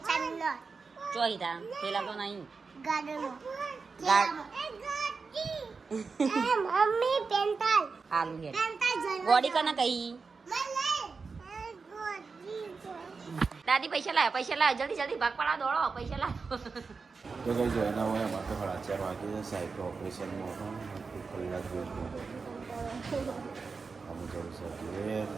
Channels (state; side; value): quieter; left; 4.7 dB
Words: ચોહીતા પેલા તો નહીં આલુ હે ગોડી કને કહી દાદી પૈસા લાવ્યા જલ્દી ભાગ પડા દોડો પૈસા લાવો. તો કઈ જોઈના હોય એમાં તો 4:30 વાગે સાહેબ ઓપરેશનમાં હતો કલાક જેવું અમે જવું છે